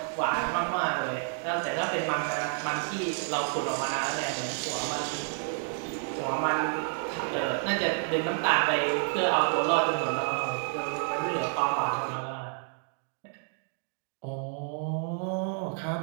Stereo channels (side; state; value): left; silent; 58 dB below the other